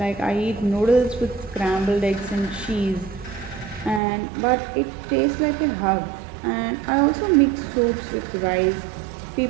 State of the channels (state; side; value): drops out; left; at 4.0 s